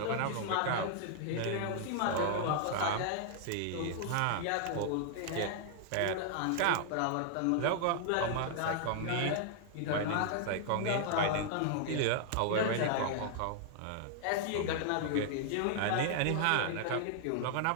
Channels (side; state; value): both; different; correlation 0.00